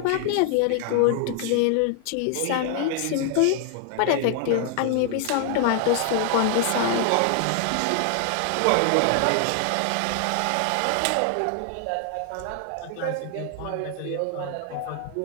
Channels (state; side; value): different; both; correlation 0.00